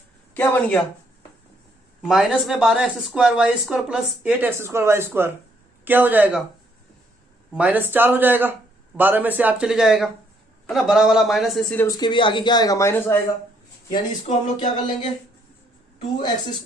क्या बन गया, माइनस में 12x² y² plus 8x² y² क्या हो जाएगा -4 हो जाएगा, 12 में से 8 चले जाएगा है ना, बड़ा वाला माइनस है इसीलिए उसके भी आगे क्या आएगा माइनस आएगा। यानी इसको हम लोग क्या कर लेंगे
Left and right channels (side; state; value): both; normal; correlation 0.70